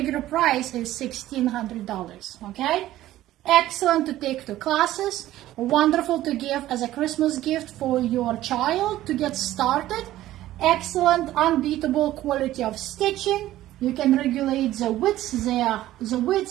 price is $1,600, okay? Excellent to take to classes, wonderful to give as a Christmas gift for your child to get started. Excellent, unbeatable quality of stitching. You can regulate the width, the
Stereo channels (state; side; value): quieter; left; 14.5 dB